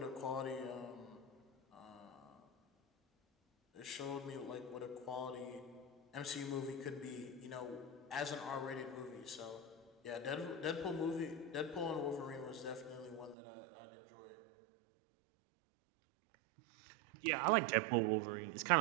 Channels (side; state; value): left; drops out; at 13.4 s